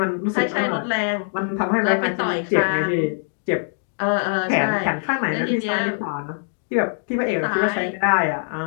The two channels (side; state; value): right; silent; digital silence